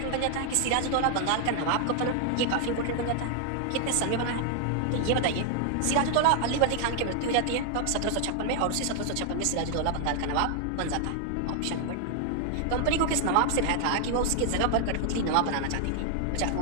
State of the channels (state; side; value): different; both; correlation 0.00